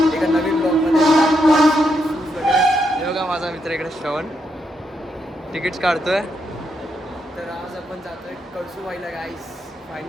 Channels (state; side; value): normal; both; correlation 0.80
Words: एका नवीन ब्लॉगमध्ये. हे बघा माझा मित्र इकडे श्रवण तिकीट्स काढतोय. तर आज आपण जातोय कळसूबाईला गाईस.